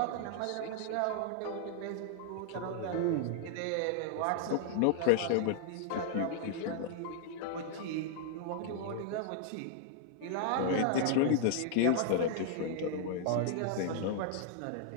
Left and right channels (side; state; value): both; different; correlation 0.00